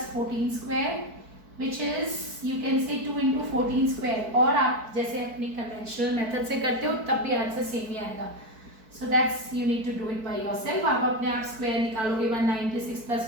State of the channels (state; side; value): late; left; 4.6 ms